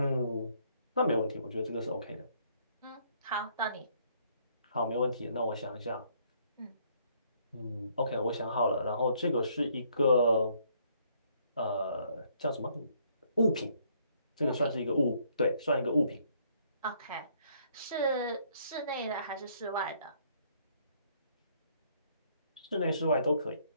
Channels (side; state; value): both; inverted; correlation -0.67